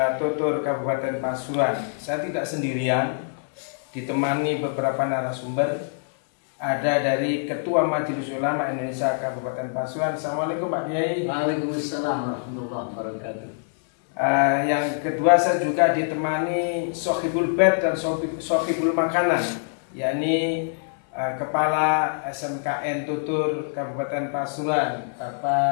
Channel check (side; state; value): right; silent; digital silence